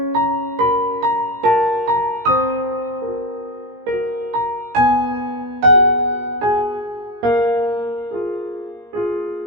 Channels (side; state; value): left; late; 17 ms